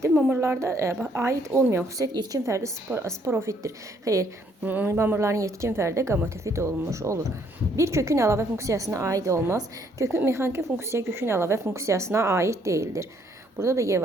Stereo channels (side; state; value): both; normal; correlation 0.67